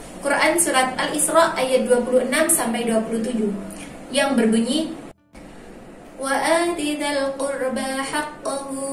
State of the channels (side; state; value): both; identical; correlation 1.00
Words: Quran surat Al-Isra ayat 26-27 yang berbunyi, وَآتِ ذَا الْقُرْبَى حَقَّهُ